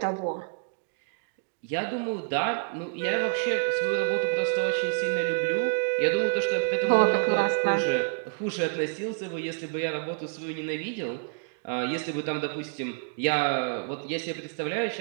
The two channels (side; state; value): left; silent; digital silence